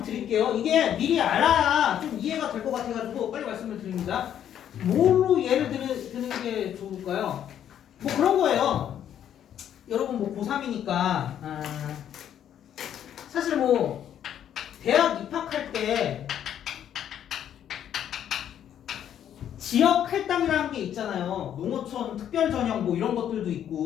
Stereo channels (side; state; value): right; quieter; 10.0 dB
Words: 드릴게요. 이게 미리 알아야 좀 이해가 될 것 같아가지고 빨리 말씀을 드립니다. 뭘로 예를 드는 게 좋을까요? 뭐 그런 거예요. 여러분 뭐 고3이니까 사실 뭐 대학 입학할 때 지역 할당이라는 게 있잖아요. 농어촌 특별 전형 뭐 이런 것들도